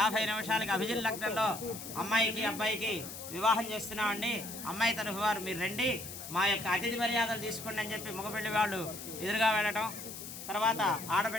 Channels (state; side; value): noise; left; hiss, 10 dB below the sound